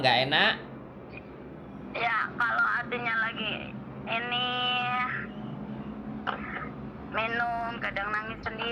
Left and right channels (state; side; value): identical; both; correlation 1.00